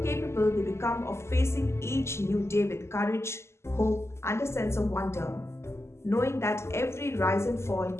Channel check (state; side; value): late; right; 0.13 ms